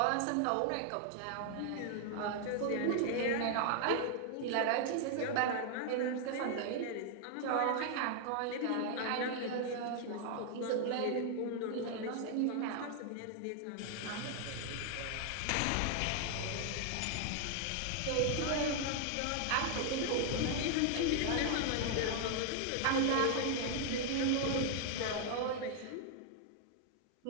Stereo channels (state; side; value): different; both; correlation 0.00